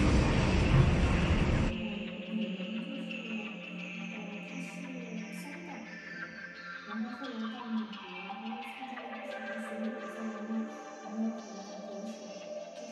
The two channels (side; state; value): both; identical; correlation 1.00